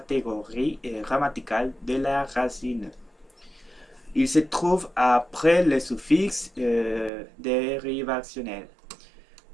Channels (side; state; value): left; drops out; at 7.1 s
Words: grammaticale de la racine. Il se trouve après le suffixe dérivationnel.